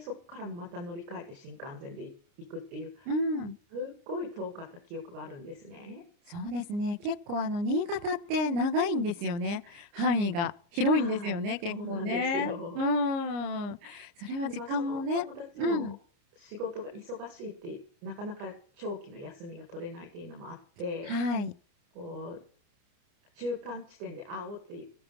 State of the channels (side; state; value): left; late; 30 ms